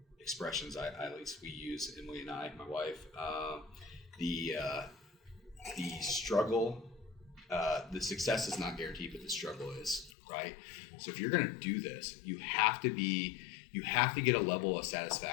expressions. At least we use, Emily and I, my wife. The struggle, the success is not guaranteed, but the struggle is, right? So if you're going to do this, you have to get a level of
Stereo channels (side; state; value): right; drops out; at 10.1 s